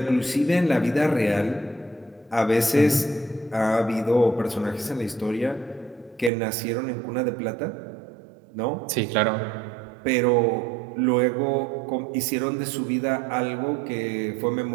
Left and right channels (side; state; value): left; drops out; at 6.3 s